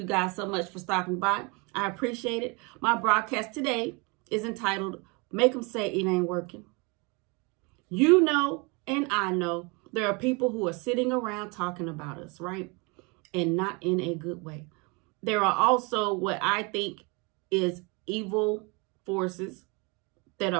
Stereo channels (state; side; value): quieter; left; 29.6 dB